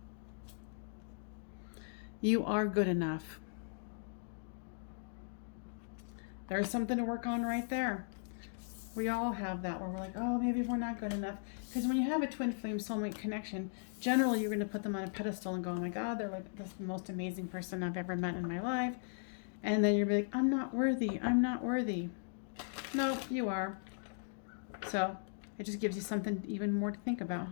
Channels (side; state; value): right; silent; digital silence